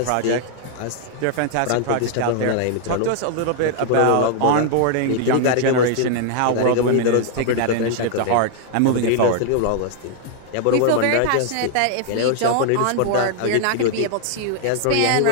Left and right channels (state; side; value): different; both; correlation 0.00